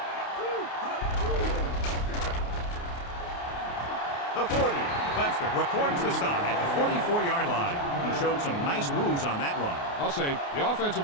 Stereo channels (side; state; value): right; late; 29 ms